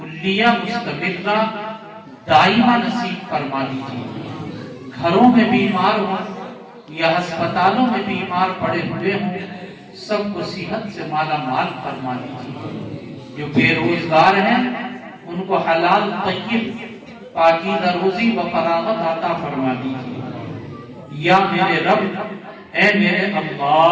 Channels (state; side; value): identical; both; correlation 1.00